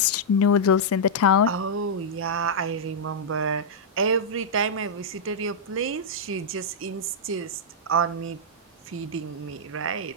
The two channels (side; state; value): both; normal; correlation -0.07